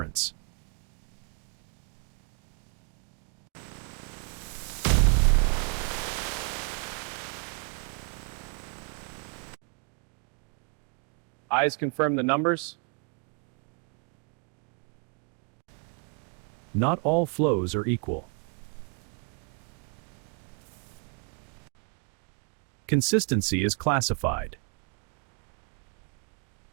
Eyes confirm the numbers. Not all flows are equal. Consistency is classified.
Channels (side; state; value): left; quieter; 36.3 dB